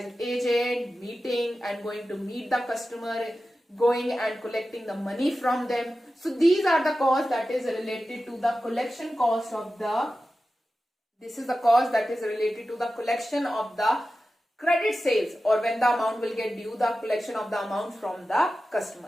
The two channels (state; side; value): normal; both; correlation 0.93